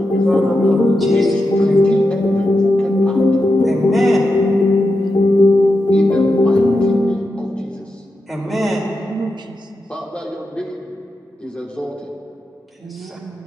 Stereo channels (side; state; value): both; normal; correlation 0.88